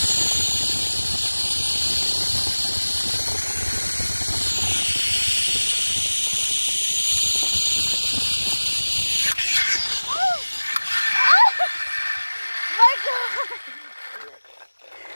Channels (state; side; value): inverted; both; correlation -1.00